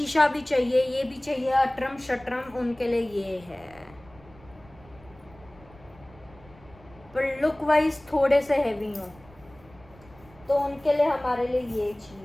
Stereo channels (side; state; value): right; noise; rumble, 24 dB below the sound